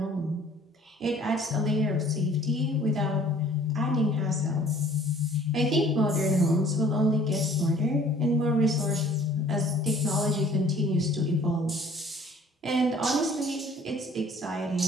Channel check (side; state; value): both; normal; correlation 0.54